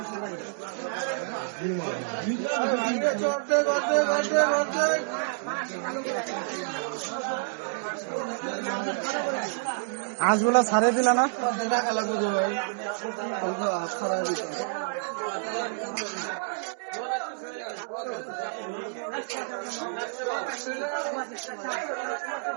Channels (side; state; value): left; silent; digital silence